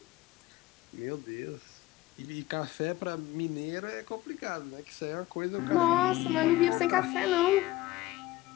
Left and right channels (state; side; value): quieter; right; 17.4 dB